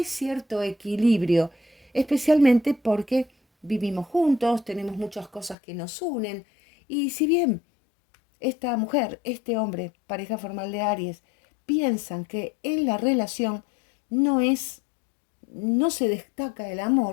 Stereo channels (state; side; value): drops out; right; at 5.6 s